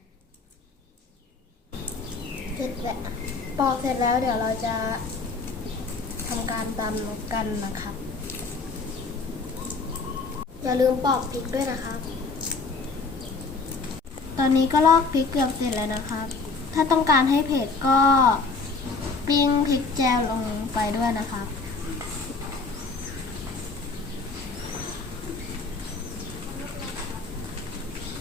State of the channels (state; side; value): quieter; right; 4.2 dB